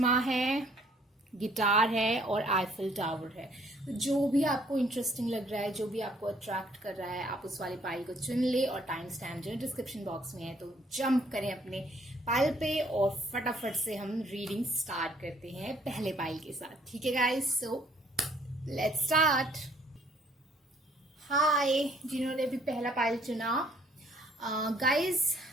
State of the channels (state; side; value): normal; both; correlation 0.63